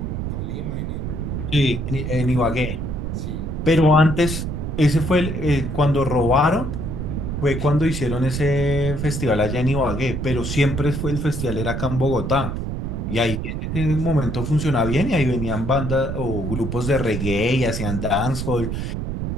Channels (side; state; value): right; noise; rumble, 3 dB below the sound